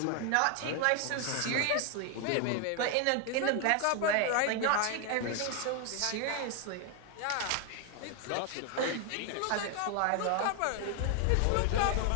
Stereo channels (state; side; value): different; both; correlation 0.01